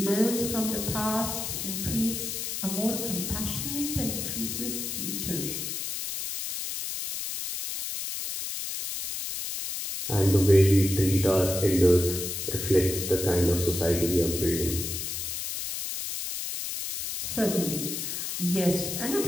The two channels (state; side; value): noise; left; hiss, 4 dB below the sound